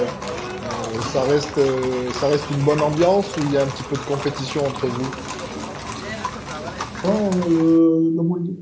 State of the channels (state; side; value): identical; both; correlation 1.00